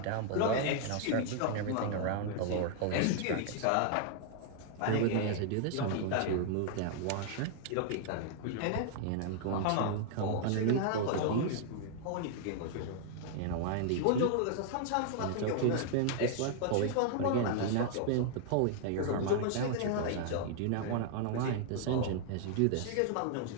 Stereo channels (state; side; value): different; both; correlation 0.00